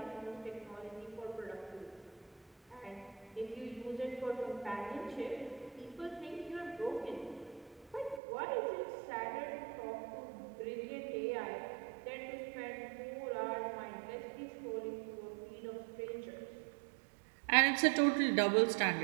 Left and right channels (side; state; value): left; drops out; at 8.2 s